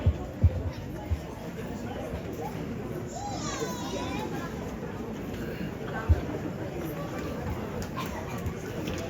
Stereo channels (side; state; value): both; identical; correlation 1.00